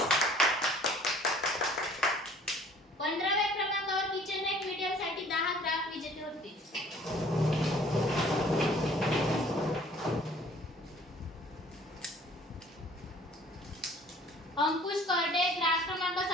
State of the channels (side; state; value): both; normal; correlation 0.53